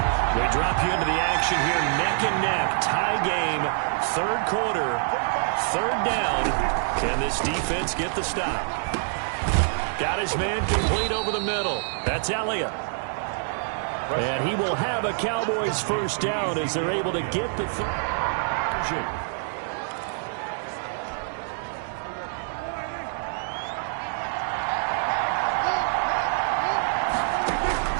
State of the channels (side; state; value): left; silent; 61 dB below the other